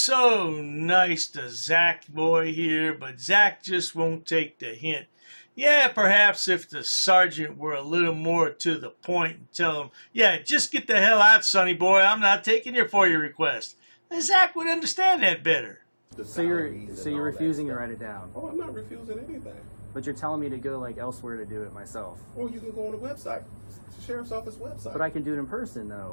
nice to Zach boy here, but Zach just won't take the hint. Yeah, perhaps if the sergeant were a little more to the point and tell him, yeah, just get the hell out, sonny boy, I'm not taking your FOIA request, then Zach would understand that better. So you're refusing to write it down? Oh, I'm not refusing anything. But you're telling me to go elsewhere to do it myself. Or you can go on the website, the sheriff's office website. But I can do it in person,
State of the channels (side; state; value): both; inverted; correlation -1.00